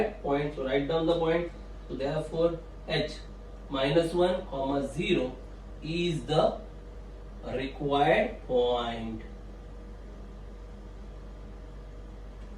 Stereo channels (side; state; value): both; identical; correlation 1.00